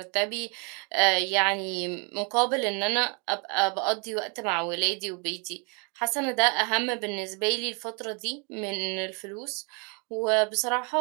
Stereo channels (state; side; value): quieter; left; 35.4 dB